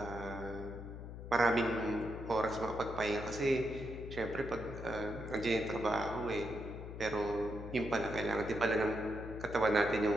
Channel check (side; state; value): left; noise; hum, 10 dB below the sound